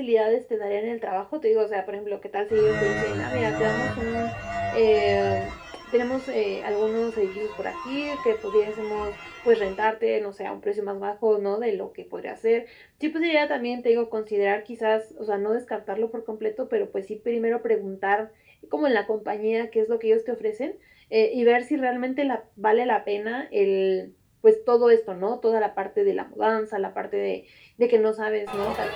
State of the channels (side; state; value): both; identical; correlation 1.00